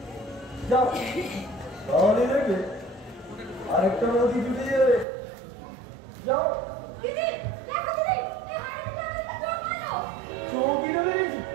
যাও, তাহলে দেখবে আরেকটা নদী জুড়ে যাবে। যাও। দিদি, দেখো দিদি, এই হারামিটা আমাকে চোখ মারলো। চৌকি রয়েছি,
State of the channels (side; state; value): left; drops out; at 5.1 s